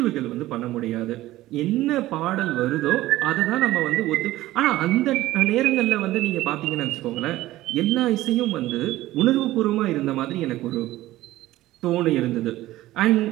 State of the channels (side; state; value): left; quieter; 16.2 dB